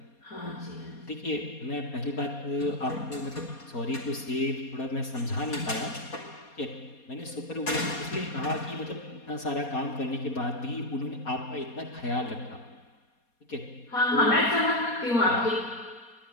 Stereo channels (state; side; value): late; right; 4.2 ms